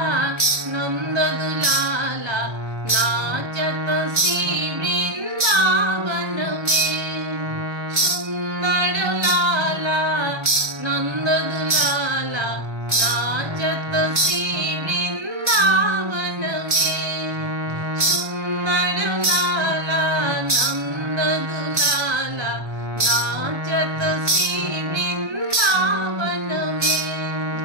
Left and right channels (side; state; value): left; late; 1.3 ms